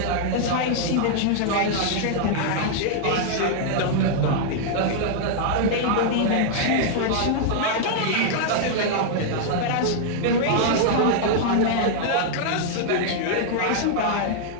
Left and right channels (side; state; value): both; different; correlation -0.01